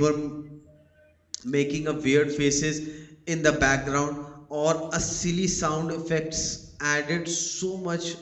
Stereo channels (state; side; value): identical; both; correlation 1.00